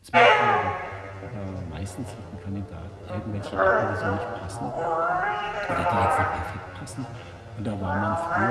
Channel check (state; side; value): identical; both; correlation 1.00